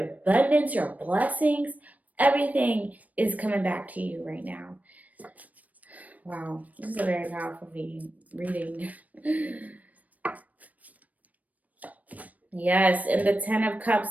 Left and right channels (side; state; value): left; late; 0.073 ms